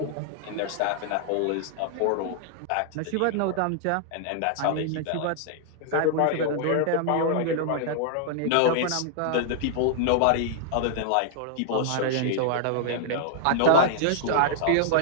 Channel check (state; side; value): different; both; correlation -0.01